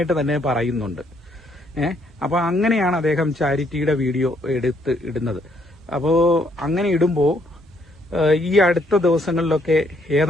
തന്നെ പറയുന്നുണ്ട്. അപ്പോൾ അങ്ങനെയാണ് അദ്ദേഹം ചാരിറ്റിയുടെ വീഡിയോ എടുത്ത് ഇടുന്നത്. അപ്പോൾ അങ്ങനെ ഇടുമ്പോൾ ഈ അടുത്ത ദിവസങ്ങളിലൊക്കെ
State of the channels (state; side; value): normal; both; correlation 0.70